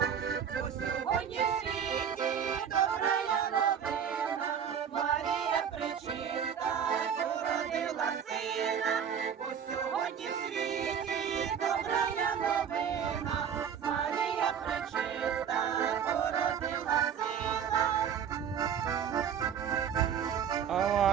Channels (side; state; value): left; quieter; 8.0 dB